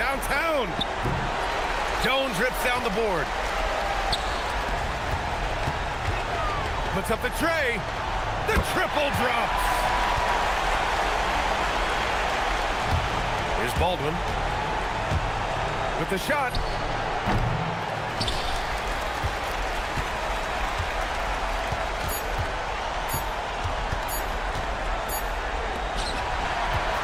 Jones rips down the board. Puts up the tray. The triple drops. Here's Baldwin with the shot.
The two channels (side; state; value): both; identical; correlation 1.00